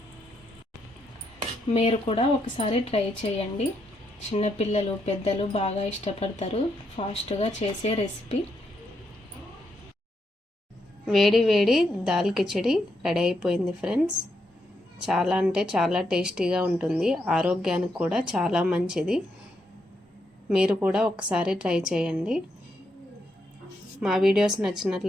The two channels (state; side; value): normal; both; correlation 0.80